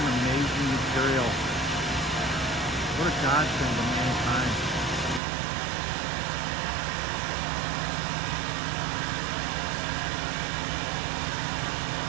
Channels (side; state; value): left; drops out; at 5.2 s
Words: amazing material. What a godsend to mankind.